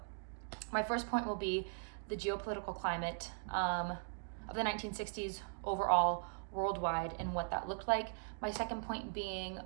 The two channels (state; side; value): silent; left; digital silence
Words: my first point will be the geopolitical climate of the 1960s overall, worldwide, and what that looked like. My second point being